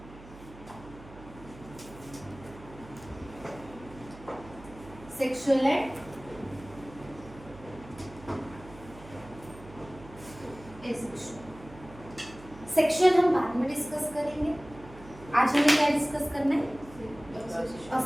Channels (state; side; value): noise; right; hum, 18 dB below the sound